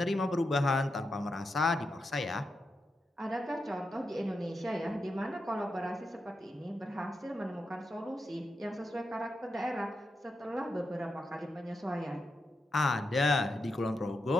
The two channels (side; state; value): both; normal; correlation 0.86